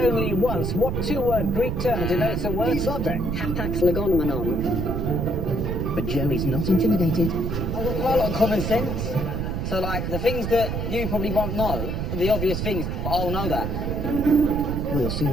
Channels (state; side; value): noise; right; rumble, 2 dB below the sound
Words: once, what 2-word Greek term denotes a word subject? Hapax legomenon. But Joey's not intimidated. I've got quite a lot of common sense. So, like, the things that you probably won't know, the obvious things, but I'll know that. We'll